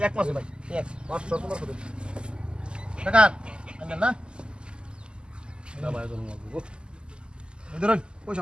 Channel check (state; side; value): late; left; 0.049 ms